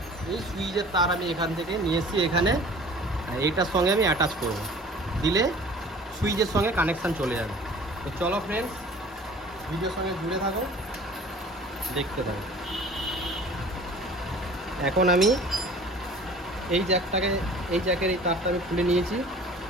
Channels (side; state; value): both; normal; correlation 0.46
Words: এই সুইচের তার আমি এখান থেকে নিয়ে এসেছি এখানে, এইটার সঙ্গে আমি অ্যাটাচ করব, দিলে সুইচের সঙ্গে কানেকশান চলে যাবে। তো চলো ফ্রেন্ডস, ভিডিওর সঙ্গে জুড়ে থাকো, দেখতে থাকো। এখন আমি এই জ্যাকের এই তারটা আমি খুলে নিয়েছি।